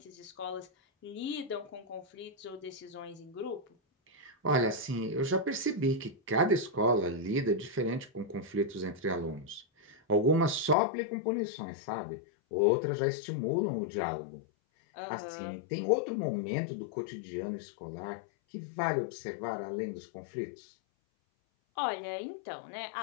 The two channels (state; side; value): drops out; right; at 10.8 s